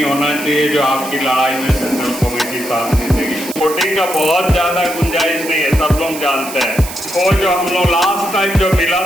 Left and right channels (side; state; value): right; noise; hiss, 11 dB below the sound